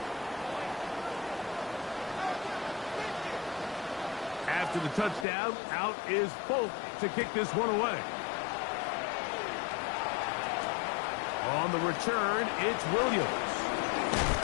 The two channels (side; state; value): right; drops out; at 5.2 s